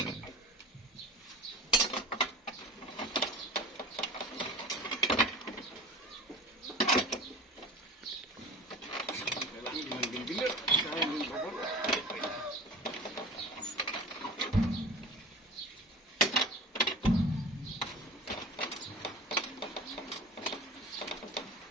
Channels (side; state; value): both; normal; correlation 0.36